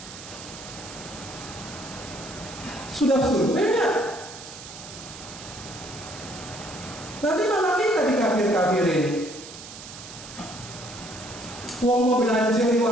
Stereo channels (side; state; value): right; noise; hiss, 14 dB below the sound